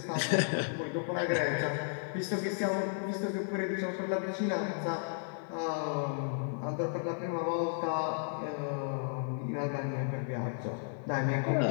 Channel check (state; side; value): silent; right; digital silence